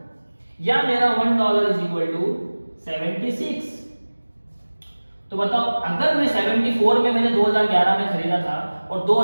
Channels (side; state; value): both; inverted; correlation -1.00